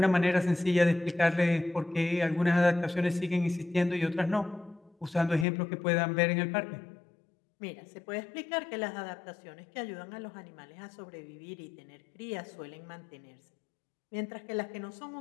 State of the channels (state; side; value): drops out; right; at 5.5 s